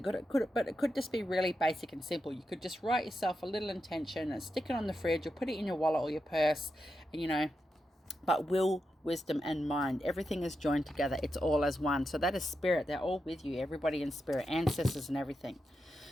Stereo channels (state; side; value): normal; both; correlation 0.87